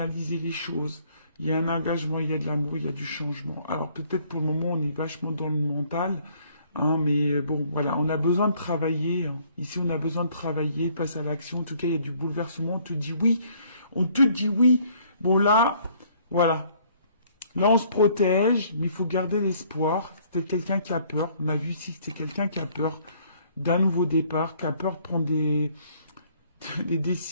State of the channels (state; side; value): inverted; both; correlation -0.62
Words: les choses. Il y a un engagement, il y a de l'amour, il y a du changement. Alors peut-être pour le moment, on est vachement dans le mental. Hein, mais bon, voilà, on a besoin de travailler. Hein. Ici, on a besoin de travailler, passe à l'action. En tout cas, il y a du bouleversement. On te dit oui. Bon, là, voilà. Là, on se protège, mais il faut garder l'espoir. C'était quelqu'un qui a peur. On a vu ici que c'était quelqu'un qui a peur d'un nouveau départ, qui a peur de prendre des